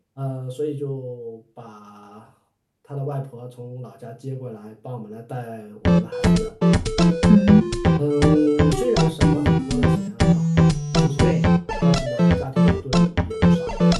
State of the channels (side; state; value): both; identical; correlation 1.00